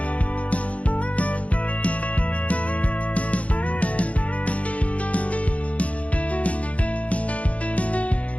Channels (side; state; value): right; late; 0.065 ms